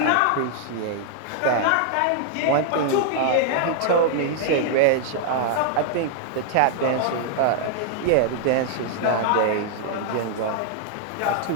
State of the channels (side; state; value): both; different; correlation -0.01